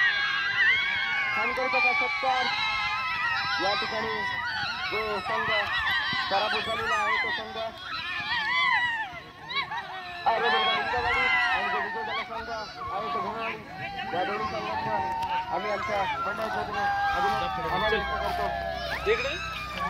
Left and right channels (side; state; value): both; identical; correlation 1.00